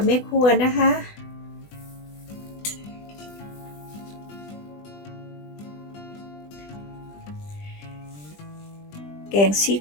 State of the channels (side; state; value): right; late; 20 ms